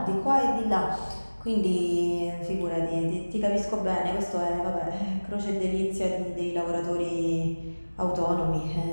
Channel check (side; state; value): both; inverted; correlation -1.00